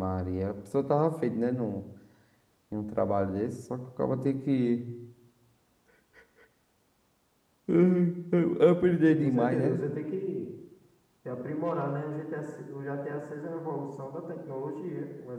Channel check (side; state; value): both; identical; correlation 1.00